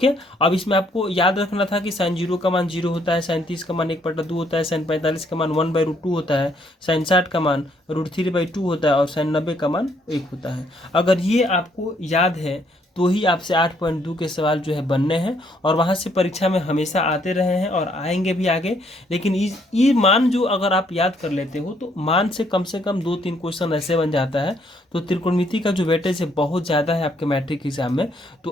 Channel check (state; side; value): normal; both; correlation 0.69